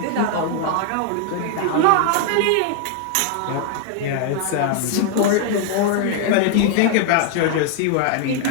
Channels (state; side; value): different; both; correlation 0.00